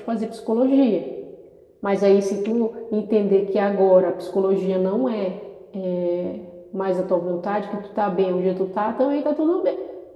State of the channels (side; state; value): both; identical; correlation 1.00